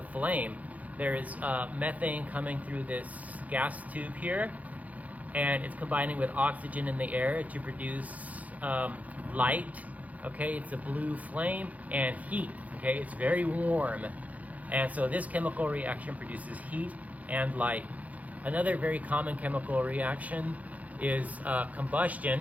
flame. There is methane coming through this gas tube here, and it's combining with oxygen in the air to produce light. Okay, it's a blue flame and heat. Okay, it's very warm. And so this chemical reaction produces heat and light. Another very common chemical reaction is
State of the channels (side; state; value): left; late; 0.073 ms